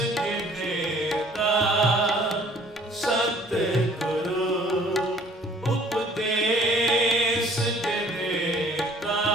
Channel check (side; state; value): both; normal; correlation 0.55